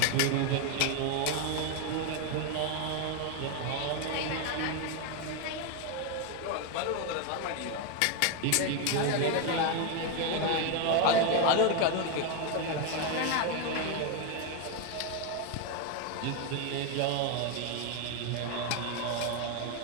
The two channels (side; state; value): both; different; correlation 0.01